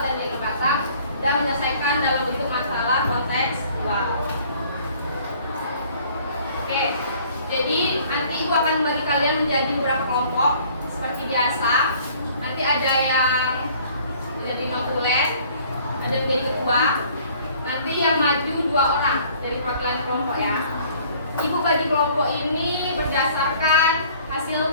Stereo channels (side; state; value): both; inverted; correlation -0.55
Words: dan diagram batang dan menyelesaikan dalam bentuk masalah konteks wow. Oke, jadi nanti Ibu akan bagi kalian menjadi beberapa kelompok seperti biasa. Nanti ada yang menjadi notulen, ada yang jadi ketua. Nanti yang maju 2 orang dari perwakilan kelompok ya. Ibu bagi kelompok ini berdasarkan